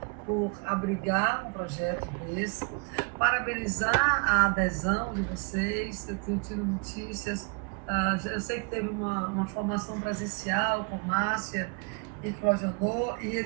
por abrigar um projeto desse, parabenizar a adesão de vocês. Eu tenho tido notícias, eu sei que teve uma formação presencial com Márcia e Clojodô, e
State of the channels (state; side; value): quieter; left; 34.8 dB